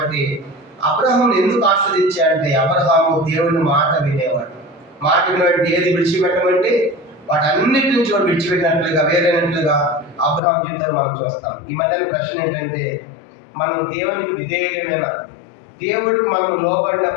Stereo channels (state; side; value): drops out; right; at 10.4 s